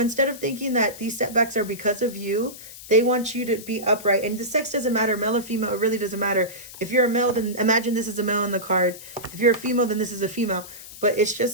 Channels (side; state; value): left; noise; hiss, 15 dB below the sound